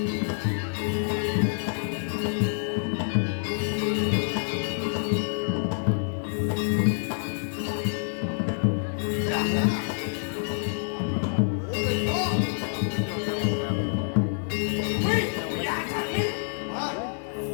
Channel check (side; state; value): right; silent; digital silence